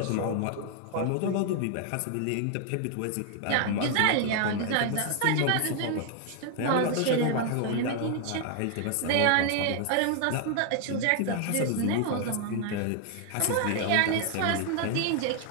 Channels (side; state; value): both; different; correlation 0.00